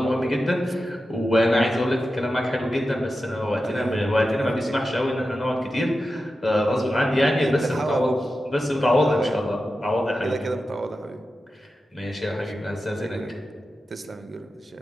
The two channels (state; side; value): normal; both; correlation 0.92